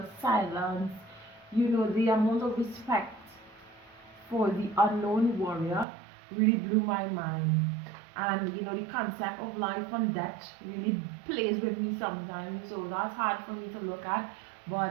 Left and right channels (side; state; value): left; drops out; at 5.9 s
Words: silence. The amount of respect for the unknown warrior really blew my mind. And the concept of life and death really plays with me sometimes, so that's hard for me to look at.